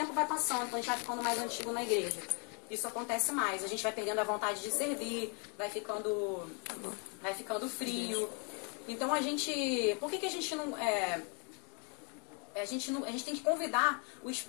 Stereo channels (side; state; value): right; quieter; 34.5 dB